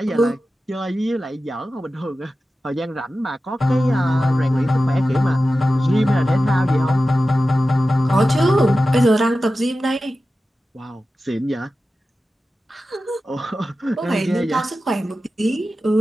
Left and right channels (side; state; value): both; normal; correlation 0.94